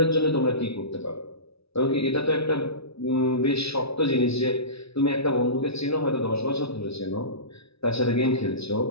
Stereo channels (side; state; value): right; late; 0.78 ms